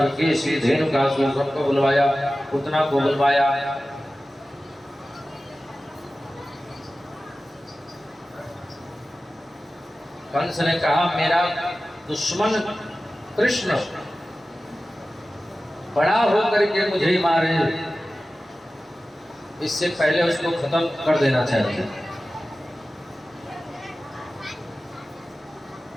केसी, धेनुकासुर सबको बुलवाया, पूतना को बुलवाया। कंस ने कहा मेरा दुश्मन कृष्ण बड़ा होकर के मुझे मारे, इससे पहले उसको खत्म कर देना चाहिए।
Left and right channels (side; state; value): both; normal; correlation 0.95